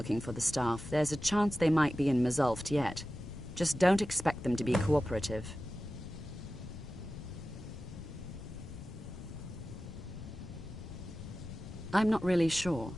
for the staff, there's a chance they might be in Mazulft yet. Just don't expect them to be cooperative. I'm not really sure.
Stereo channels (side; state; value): left; noise; rumble, 12 dB below the sound